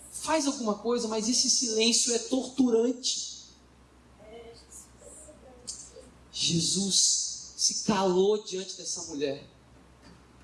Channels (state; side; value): identical; both; correlation 1.00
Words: Faz alguma coisa, mas esse silêncio é torturante. Jesus se calou diante dessa mulher.